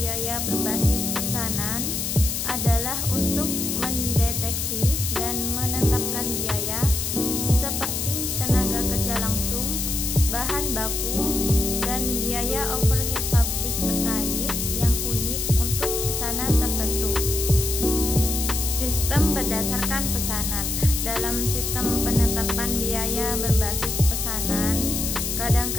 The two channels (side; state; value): left; noise; hiss, 2 dB below the sound